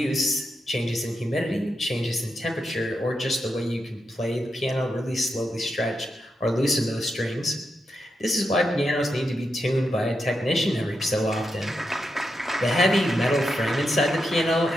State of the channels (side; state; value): both; normal; correlation 0.85